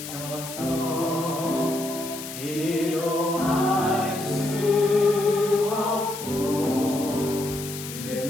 기도할 수 없고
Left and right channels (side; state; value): left; noise; hiss, 10 dB below the sound